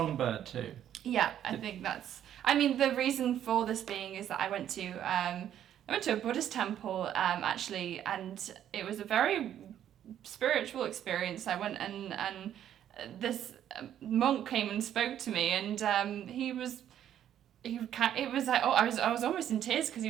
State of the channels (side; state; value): left; quieter; 10.5 dB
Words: too. Yeah, I think that's... I mean, the reason for this being is that I went to a Buddhist temple, actually, and it was a very spiritual experience. I went and this monk came and spoke to me, and it was like, I was almost in tears because he